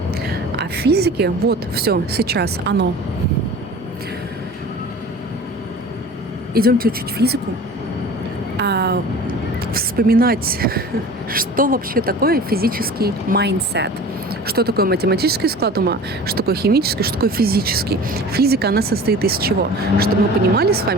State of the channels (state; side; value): normal; both; correlation 0.40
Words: А в физике, вот, все, сейчас оно. Идемте учить физику, вспоминать, что вообще такое физический майндсет. Что такое математический склад ума, что такое химический, что такое физический. Физика, она состоит из чего? Чтобы мы понимали с